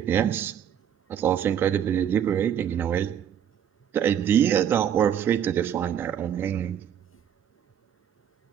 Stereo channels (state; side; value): quieter; left; 9.3 dB